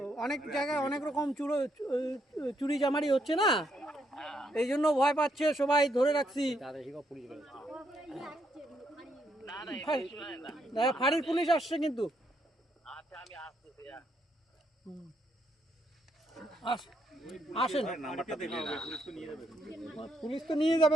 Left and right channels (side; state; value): both; normal; correlation 0.75